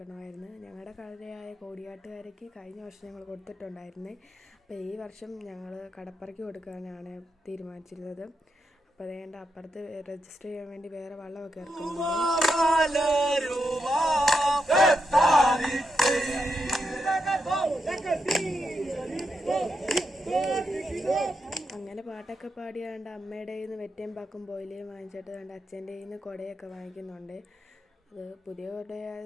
ഞങ്ങളുടെ കരയായ കോടിയാട്ടുകാരയ്ക്ക് കഴിഞ്ഞ വർഷം ഞങ്ങൾ കൊടുത്തിട്ടുണ്ടായിരുന്നേ. അപ്പോൾ ഈ വർഷം ഞങ്ങൾ കടപ്പരയ്ക്ക് കൊടുക്കാനാണ് തീരുമാനിച്ചിരുന്നത്. അപ്പോൾ അപ്പുറത്ത് രജിസ്റ്റർ ചെയ്യാൻ വേണ്ടി വേറെ വള്ളമൊക്കെ ഇറക്കുന്നുണ്ട്. അങ്ങനെ പാട്ടൊക്കെ പാടിയാണ്ട് അമ്മയുടെ കയ്യിൽ നിന്ന് വെറ്റയും പാക്കും പോയിലേയും വാങ്ങിച്ചിട്ട് അച്ഛൻ്റെ കയ്യിൽ നിന്ന് കുടയൊക്കെ വാങ്ങിക്കുന്നുണ്ട്. അത് പുതിയ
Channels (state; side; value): normal; both; correlation 0.84